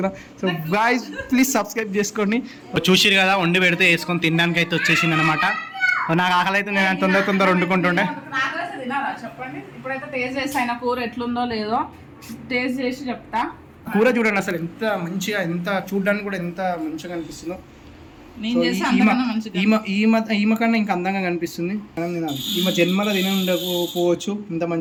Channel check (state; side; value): identical; both; correlation 1.00